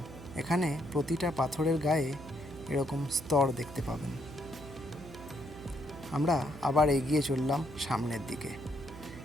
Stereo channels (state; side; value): noise; right; hum, 15 dB below the sound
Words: এখানে প্রতিটা পাথরের গায়ে এরকম স্তর দেখতে পাবেন। আমরা আবার এগিয়ে চললাম সামনের দিকে।